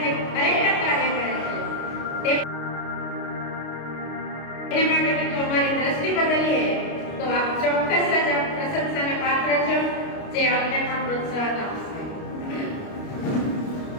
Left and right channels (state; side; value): late; right; 29 ms